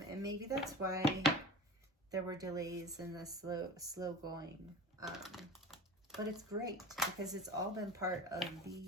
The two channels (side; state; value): both; normal; correlation 0.34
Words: maybe that's why there were delays in the slow going. But it's great because it's all been part of